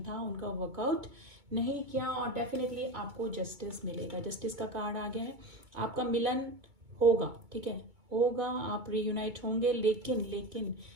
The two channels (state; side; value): late; left; 2.2 ms